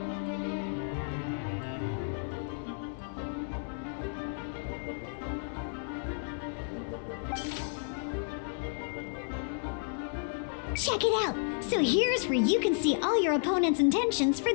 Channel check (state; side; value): silent; right; 56 dB below the other